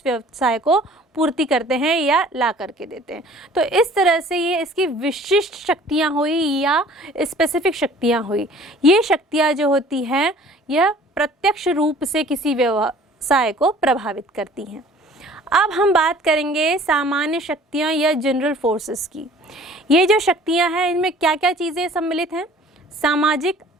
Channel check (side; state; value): both; normal; correlation 0.50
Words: व्यवसाय को पूर्ति करते हैं या ला करके देते हैं। तो इस तरह से ये इसकी विशिष्ट शक्तियाँ हुई या स्पेसिफिक शक्तियाँ हुई। ये शक्तियाँ जो होती हैं यह प्रत्यक्ष रूप से किसी व्यवसाय को प्रभावित करती हैं। अब हम बात करेंगे सामान्य शक्तियाँ या जनरल फोर्सेस की। ये जो शक्तियाँ हैं इनमें क्या क्या चीज़ें सम्मिलित हैं? सामाजिक,